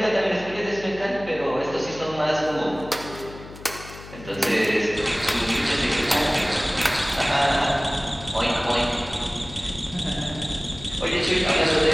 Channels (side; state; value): left; noise; hum, 16 dB below the sound